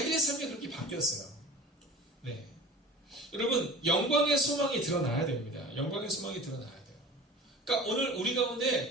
삶이 그렇게 바뀌었어요. 네. 여러분 영광의 소망이 드러나야 됩니다. 영광의 소망이 드러나야 돼요. 그러니까 오늘 우리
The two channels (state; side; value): normal; both; correlation 0.38